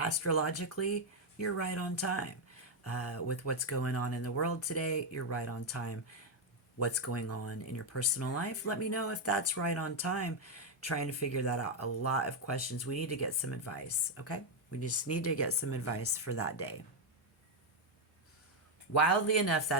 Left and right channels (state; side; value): normal; both; correlation 0.02